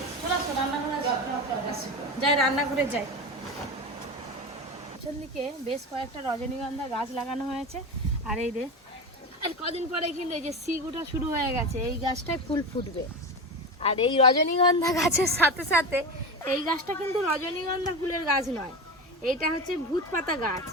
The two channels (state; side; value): normal; both; correlation 0.23